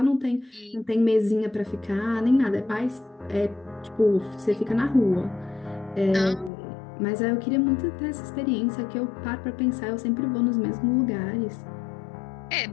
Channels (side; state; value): right; drops out; at 6.5 s